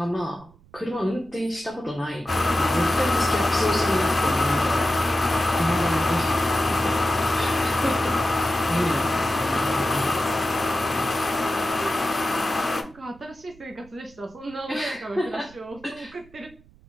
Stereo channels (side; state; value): right; noise; rumble, 26 dB below the sound